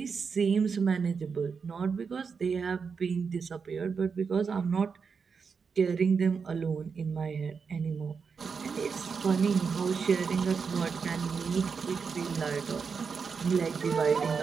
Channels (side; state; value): left; quieter; 5.7 dB